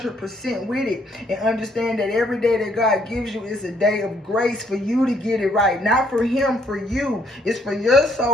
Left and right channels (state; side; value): normal; both; correlation 0.67